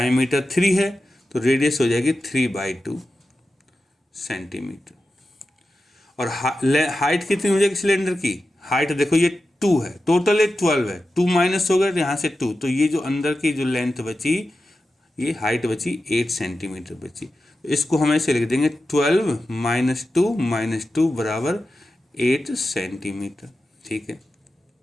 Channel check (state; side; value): normal; both; correlation 0.92